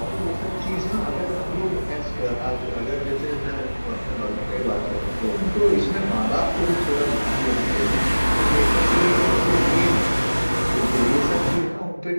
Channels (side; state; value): both; inverted; correlation -1.00